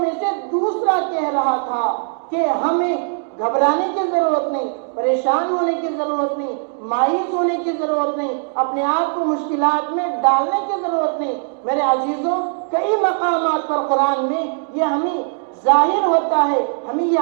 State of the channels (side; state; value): left; silent; 61 dB below the other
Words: سے دوسرا کہہ رہا تھا کہ ہمیں گھبرانے کی ضرورت نہیں، پریشان ہونے کی ضرورت نہیں، مایوس ہونے کی ضرورت نہیں، اپنے آپ کو مشکلات میں ڈالنے کی ضرورت نہیں۔ میرے عزیزوں، کئی مقامات پر قرآن میں یہ ہمیں ظاہر ہوتا ہے، ہمیں یہ